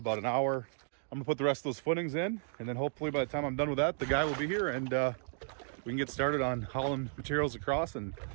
about an hour. I'm gonna put the rest of those footings in, and then hopefully by the time I'm done with that, the guy will be here, and we can get started on hauling materials across and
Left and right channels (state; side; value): silent; left; digital silence